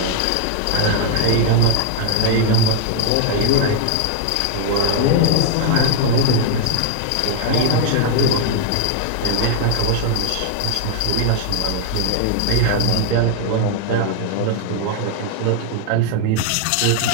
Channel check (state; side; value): different; both; correlation 0.00